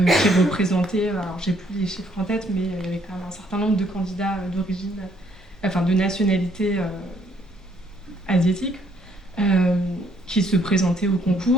représentaient, alors j'ai plus les chiffres en tête, mais il y avait quand même un certain nombre de candidats d'origine, de nationalité asiatique, qui se présentaient au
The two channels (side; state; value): both; normal; correlation 0.67